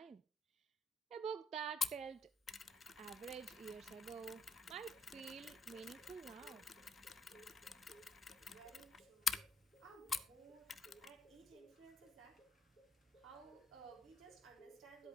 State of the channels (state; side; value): normal; both; correlation 0.74